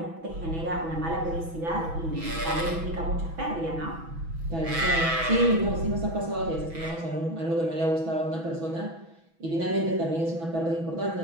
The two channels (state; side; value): late; left; 6.1 ms